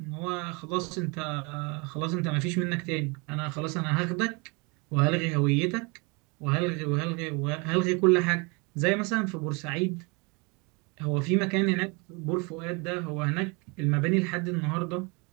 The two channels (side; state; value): left; quieter; 29.7 dB